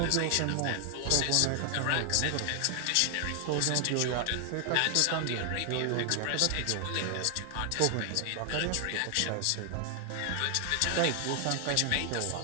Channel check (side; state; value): both; different; correlation 0.00